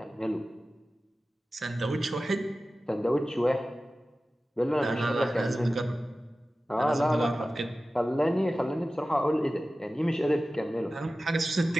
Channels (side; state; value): both; normal; correlation 0.95